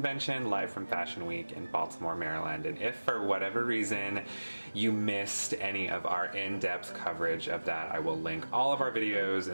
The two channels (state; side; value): inverted; both; correlation -1.00